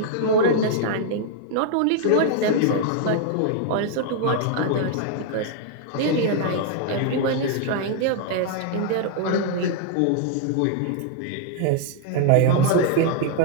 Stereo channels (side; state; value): both; different; correlation 0.00